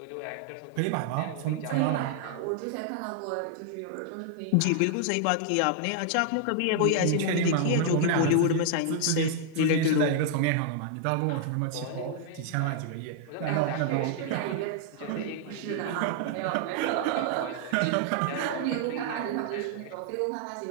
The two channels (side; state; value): both; different; correlation -0.01